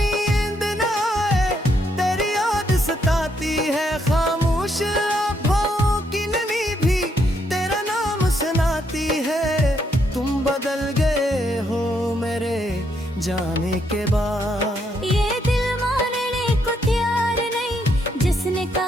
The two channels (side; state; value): both; normal; correlation 0.75